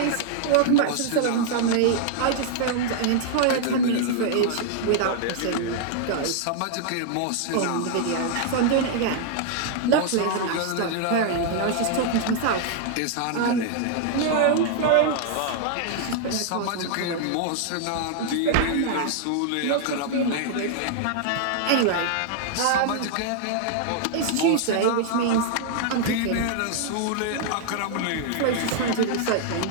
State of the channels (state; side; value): different; both; correlation 0.00